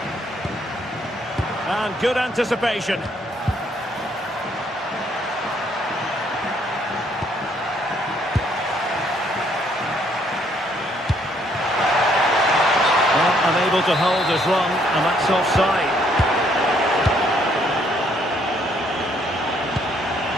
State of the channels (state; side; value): normal; both; correlation 0.68